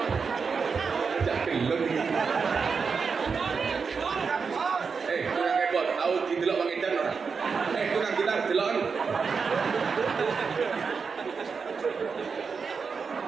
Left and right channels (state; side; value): quieter; left; 5.4 dB